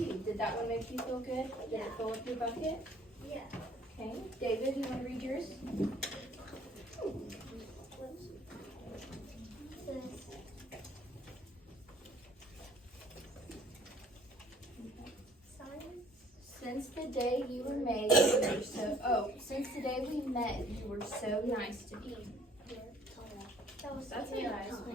Did that one make you feel good? Did it fill up your bucket? Yeah. Okay. David, you want to read yours? Since the day you were made, you were since the day we met, you were so nice to me. That's a nice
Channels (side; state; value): both; normal; correlation 0.57